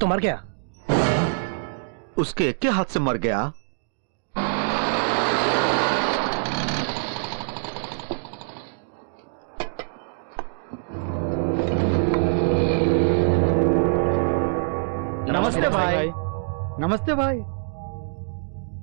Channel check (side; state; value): left; silent; digital silence